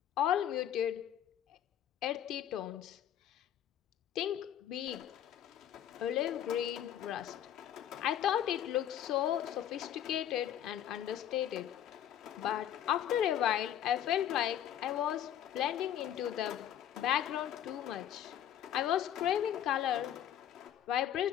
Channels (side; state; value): right; quieter; 10.6 dB